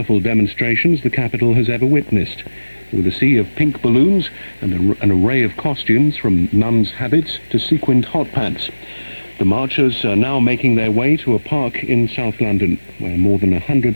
demonstrations the capital has ever witnessed, with a sea of pink balloons and an array of costumes from nuns' habits to sequined hot pants. The marchers are now making their way to a park in South London, where more than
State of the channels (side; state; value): both; inverted; correlation -1.00